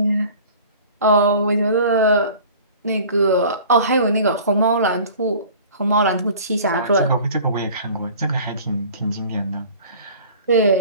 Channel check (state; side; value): inverted; both; correlation -0.45